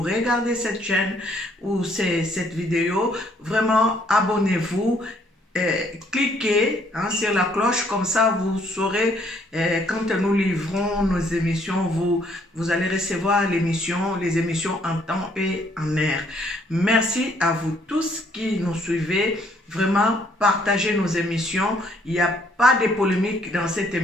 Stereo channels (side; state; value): both; normal; correlation 0.66